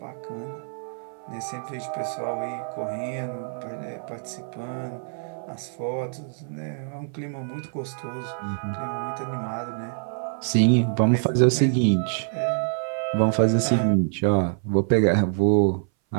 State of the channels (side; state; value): left; silent; 59 dB below the other